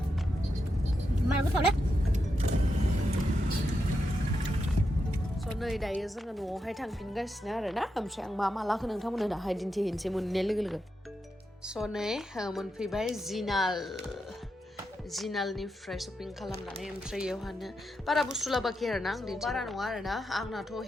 नै दायो जोङो न'आवहाय थांफिनगासिनो आरोना ओमफ्राय आं मा लाखो नोंथांमोननो दाहाय दिन्थिहैनोसै मोननाय लोगो लोगो स' नै मोनफैबाय जिनालनिफ्राय शपिं खालामनानै ओमफ्राय बेयावहानो बारा बुस्थु लाबोआखै आरोना आं बारा नङा आरोना आंनाथ'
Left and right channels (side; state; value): both; normal; correlation 0.85